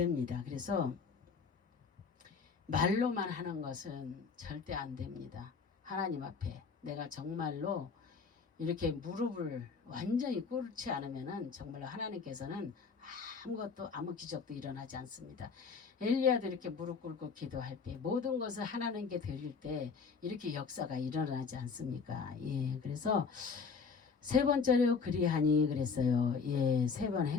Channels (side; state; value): right; quieter; 5.3 dB